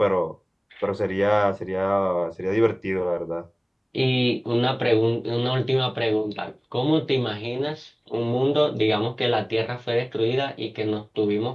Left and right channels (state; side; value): identical; both; correlation 1.00